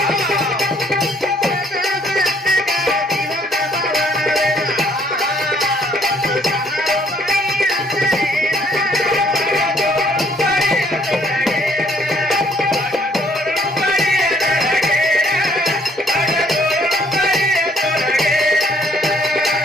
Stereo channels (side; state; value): both; normal; correlation 0.63